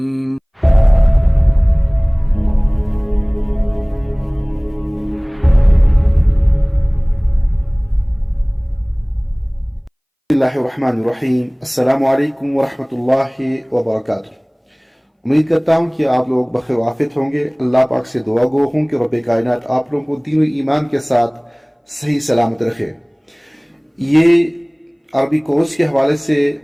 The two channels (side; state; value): both; identical; correlation 1.00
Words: بسم اللہ الرحمن الرحیم۔ السلام علیکم ورحمۃ اللہ وبرکاتہ۔ امید کرتا ہوں کہ آپ لوگ بخیر وافیت ہوں گے۔ اللہ پاک سے دعا گو ہوں کہ رب کائنات آپ لوگوں کو دین و ایمان کے ساتھ صحیح سلامت رکھے۔ یہ عربی کورس کے حوالے سے